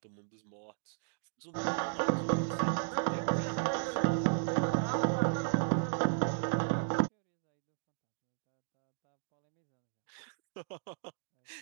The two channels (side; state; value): left; silent; digital silence